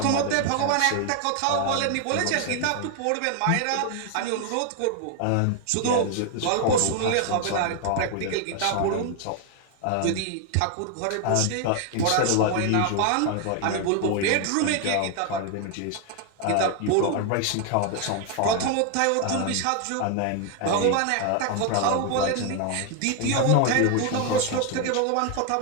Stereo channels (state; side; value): different; both; correlation 0.00